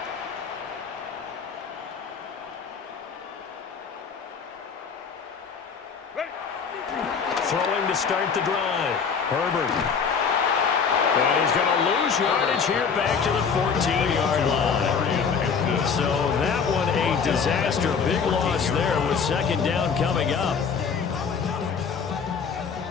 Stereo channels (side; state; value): right; quieter; 6.1 dB